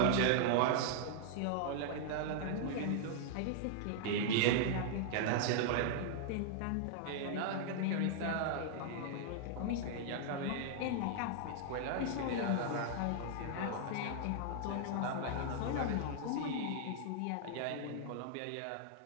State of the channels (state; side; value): different; both; correlation -0.01